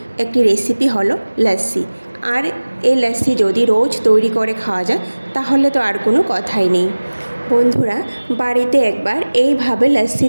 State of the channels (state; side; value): inverted; both; correlation -1.00